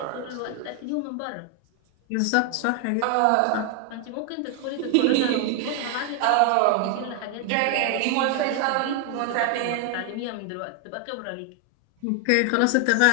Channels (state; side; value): different; both; correlation 0.00